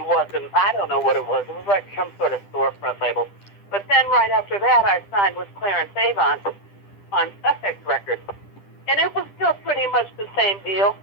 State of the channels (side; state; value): right; late; 10 ms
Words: I don't know what it was. It was like some sort of storefront label. But then right after that, I signed with Clarence Avant on Sussex Records. And it was still pretty much the same deal.